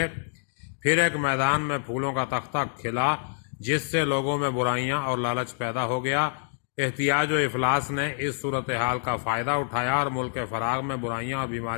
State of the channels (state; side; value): silent; right; digital silence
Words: پھر ایک میدان میں پھولوں کا تختہ کھلا جس سے لوگوں میں برائیاں اور لالچ پیدا ہو گیا۔ احتیاج و افلاس نے اس صورتحال کا فائدہ اٹھایا اور ملک فراغ میں برائیاں اور